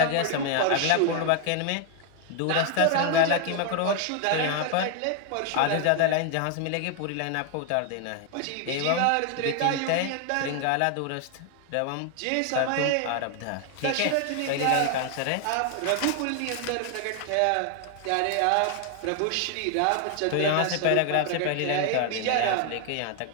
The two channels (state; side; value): different; both; correlation 0.00